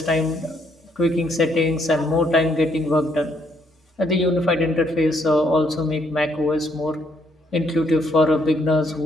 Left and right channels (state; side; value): normal; both; correlation 0.71